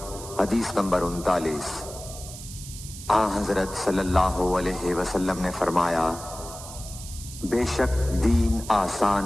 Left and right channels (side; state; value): right; noise; hiss, 13 dB below the sound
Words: حدیث نمبر 39۔ حضرت صلی اللہ علیہ وسلم نے فرمایا، بے شک دین